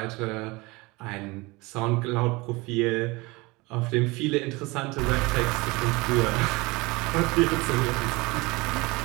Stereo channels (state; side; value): quieter; left; 24.1 dB